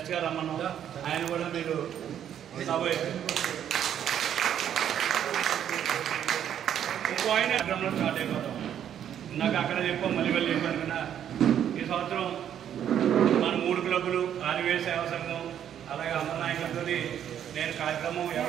రమ్మన్నాం. ఆయన కూడా మీరు ఇంకో ఆయన కార్యక్రమంలో స్టార్ట్ అయిపోతాం. నాకు అక్కడ చెప్పాం, మళ్ళీ వెళ్ళి చెప్పాను కదా. ఈ సంవత్సరం మన 3 క్లబ్బులు, ఆర్వీఐ సేవా సంఘం, అలాగే అందరి నాయకులతో నేను కార్యక్రమం.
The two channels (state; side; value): quieter; left; 9.8 dB